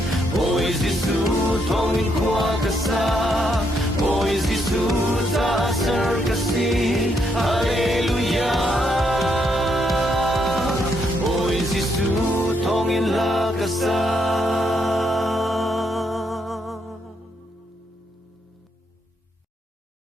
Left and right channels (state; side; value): normal; both; correlation 0.76